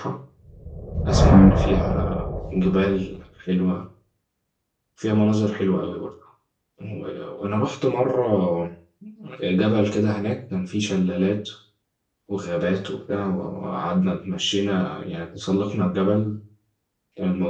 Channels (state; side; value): identical; both; correlation 1.00